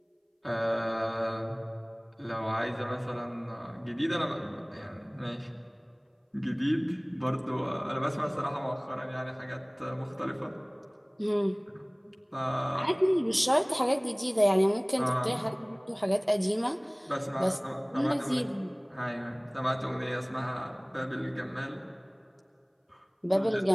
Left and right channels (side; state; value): both; identical; correlation 1.00